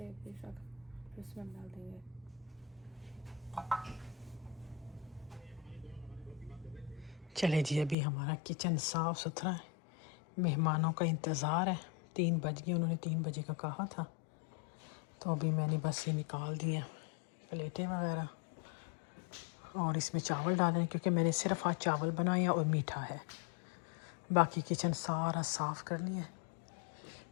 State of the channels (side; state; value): right; drops out; at 8.0 s